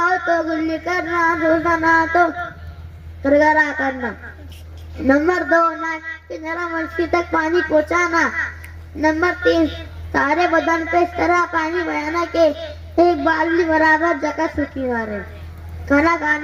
ہو تو گلی کرنا, روزہ نہ تو گرگرا کرنا. نمبر 2 نرم منشی تک پانی پہنچانا. نمبر 3 سارے بدن پہ اس طرح پانی بہانا کہ ایک بالٹی برابر جگہ سوکھی نہ رہے. کھانا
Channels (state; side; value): identical; both; correlation 1.00